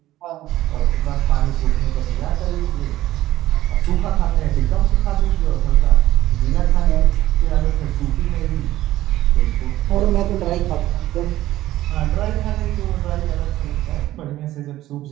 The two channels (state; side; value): quieter; left; 14.9 dB